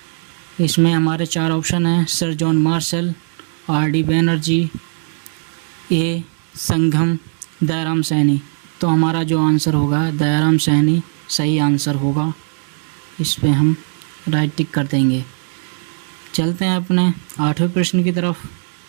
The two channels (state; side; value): silent; left; digital silence